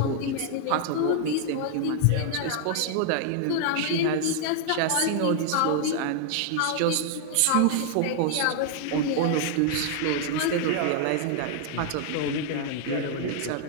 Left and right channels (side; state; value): both; different; correlation 0.00